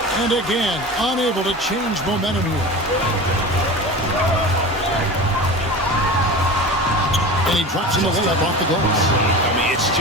And again, unable to change momentum here. And he drops in the layup off the glass. I mean, it's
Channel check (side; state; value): both; normal; correlation 0.32